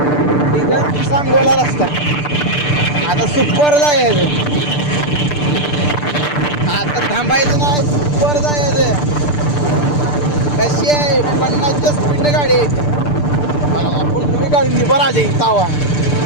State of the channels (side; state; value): right; late; 6.8 ms